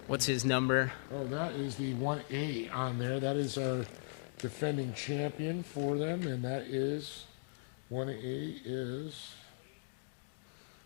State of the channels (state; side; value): silent; right; digital silence